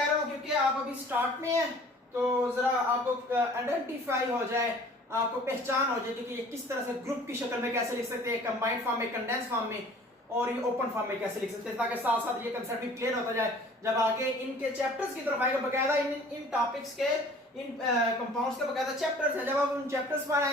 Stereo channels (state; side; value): normal; both; correlation 0.50